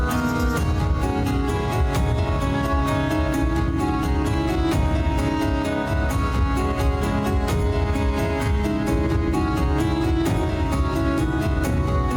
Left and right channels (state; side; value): identical; both; correlation 1.00